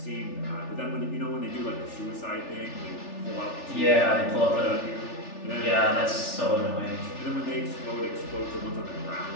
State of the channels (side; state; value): right; late; 3.4 ms